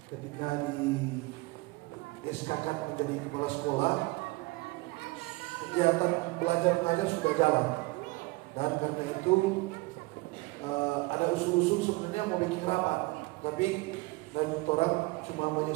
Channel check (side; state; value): left; quieter; 23.7 dB